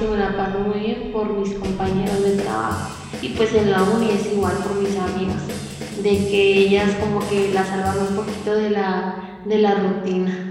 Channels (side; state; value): both; identical; correlation 1.00